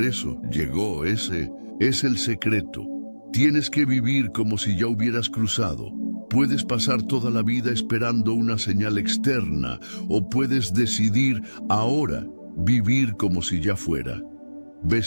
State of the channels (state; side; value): inverted; both; correlation -1.00